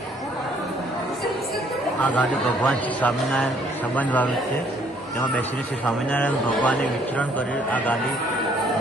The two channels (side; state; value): both; normal; correlation 0.64